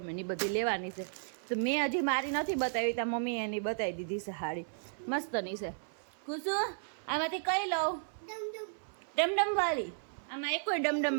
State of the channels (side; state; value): left; silent; 55 dB below the other